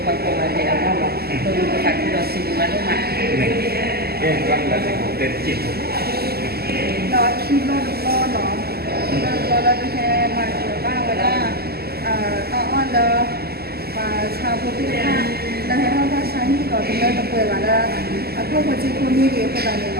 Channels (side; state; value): left; late; 0.46 ms